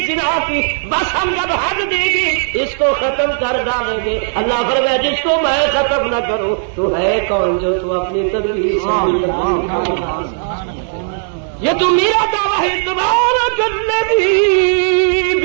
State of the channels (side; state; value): left; silent; 62 dB below the other